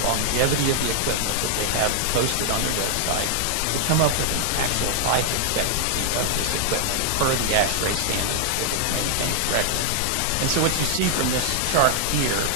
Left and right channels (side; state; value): both; different; correlation 0.00